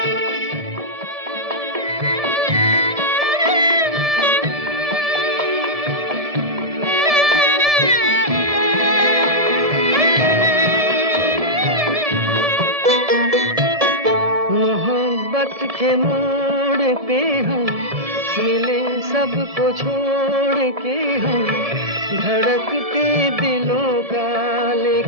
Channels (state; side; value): late; left; 1.7 ms